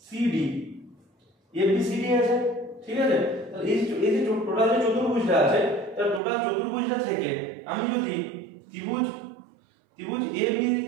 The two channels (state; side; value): drops out; left; at 6.2 s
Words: FBCD আছে, ঠিক আছে। তাহলে এই যে টোটাল যে চতুর্ভুজটা আছে তার টোটাল চতুর্ভুজটা থেকে আমি যদি ত্রিভুজ